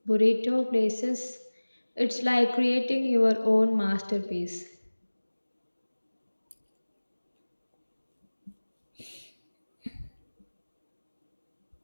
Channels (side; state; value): both; inverted; correlation -1.00